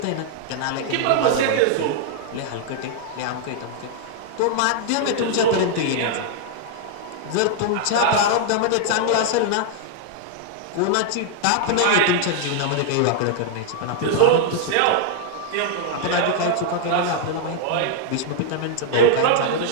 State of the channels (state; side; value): different; both; correlation -0.01